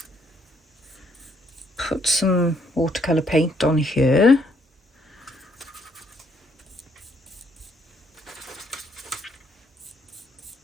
put some watercolour paint on here.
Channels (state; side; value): normal; both; correlation 0.69